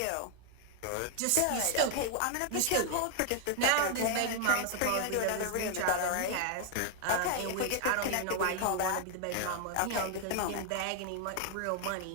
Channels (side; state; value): both; different; correlation 0.00